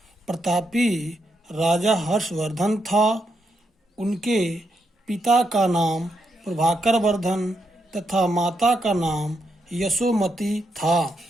प्रतापी राजा हर्षवर्धन था। उनके पिता का नाम प्रभाकर वर्धन तथा माता का नाम यशोमती था।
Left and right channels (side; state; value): both; normal; correlation 0.81